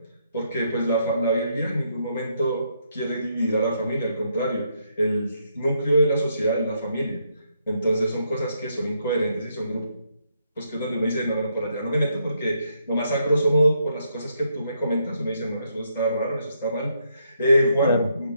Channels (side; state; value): both; inverted; correlation -0.75